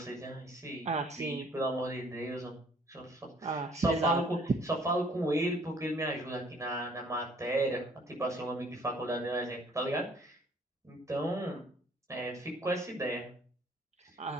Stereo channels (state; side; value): normal; both; correlation 0.59